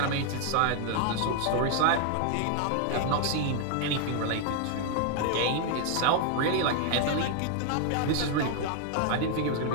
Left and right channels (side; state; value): both; different; correlation 0.00